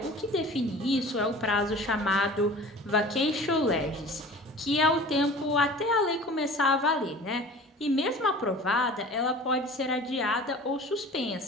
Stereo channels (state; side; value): normal; both; correlation 0.42